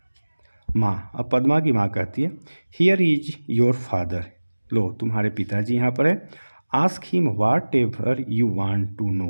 माँ, अब पद्मा की माँ कहती है हियर इज योर फादर, लो तुम्हारे पिताजी यहाँ पर है। Ask him whatever you want to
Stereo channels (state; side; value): inverted; both; correlation -1.00